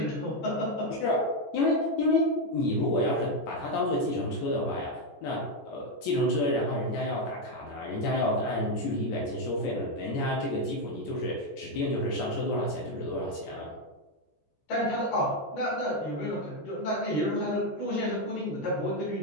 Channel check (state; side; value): late; right; 14 ms